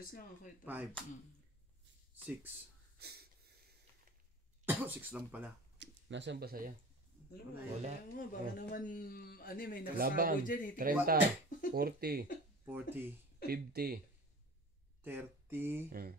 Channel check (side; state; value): both; normal; correlation 0.39